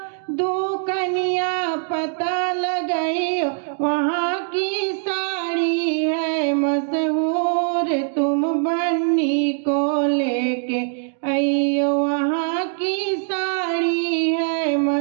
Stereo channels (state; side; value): silent; left; digital silence